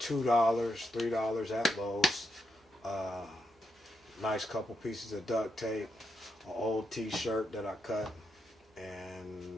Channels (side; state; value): both; normal; correlation 0.83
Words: $3 at Lowe's. Nice couple pieces of duct tape, an old t-shirt that I cut,